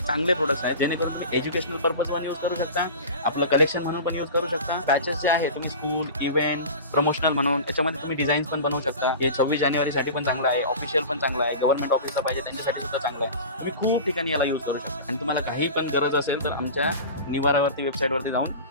प्रोडक्ट्स आहेत जेणेकरून तुम्ही एज्युकेशनल पर्पज पण यूज करू शकता, आपलं कलेक्शन म्हणून पण यूज करू शकता. पॅचेस जे आहे तुम्ही स्कूल, इव्हेंट, प्रमोशनल म्हणून याच्यामध्ये तुम्ही डिझाईन्स पण बनवू शकता. हे 26 जानेवारीसाठी पण चांगलं आहे, ऑफिशियल पण चांगलं आहे, गव्हर्नमेंट ऑफिसला पाहिजे त्यांच्यासाठी सुद्धा चांगलं आहे. तुम्ही खूप ठिकाणी याला यूज करू शकता आणि तुम्हाला काही पण गरज असेल तर आमच्या निवारावरती वेबसाईटवरती जाऊन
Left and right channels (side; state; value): both; inverted; correlation -0.33